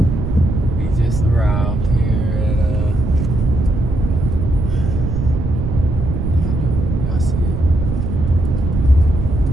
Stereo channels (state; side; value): noise; right; rumble, 2 dB below the sound